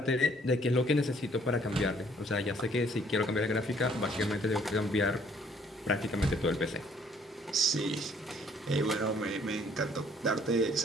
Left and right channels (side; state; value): both; normal; correlation 0.62